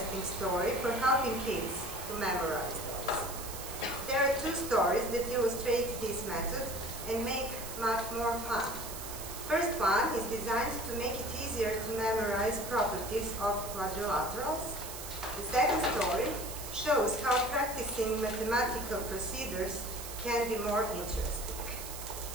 story for helping kids to memorize those. There are two stories that illustrate this method and make math more fun. First one is designed to make it easier to memorize properties of quadrilaterals. The second story shows how practicing mathematical procedures can be more interesting.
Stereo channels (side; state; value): right; noise; hiss, 9 dB below the sound